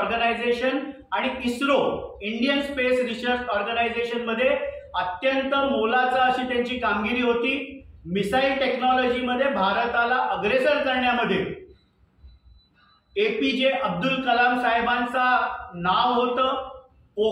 आणि ISRO Indian space research organisation मध्ये अत्यंत मोलाचा अशी त्यांची कामगिरी होती। मिसाईल टेक्नॉलॉजी मध्ये भारताला अग्रेसर करण्यामध्ये APJ अब्दुल कलाम साहेबांचा नाव होतं।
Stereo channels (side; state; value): both; identical; correlation 1.00